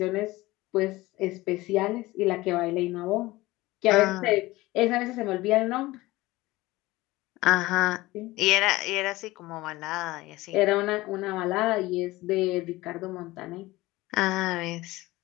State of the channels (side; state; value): right; quieter; 19.3 dB